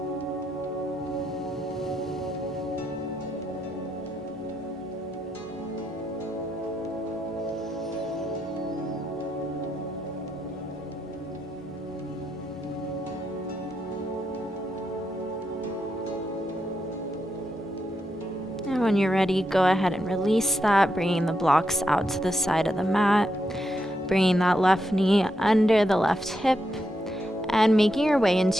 And when you're ready, go ahead and release that, bringing the blocks out to the side of the mat, bringing that left knee under the left hip, and making your way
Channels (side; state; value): both; normal; correlation 0.82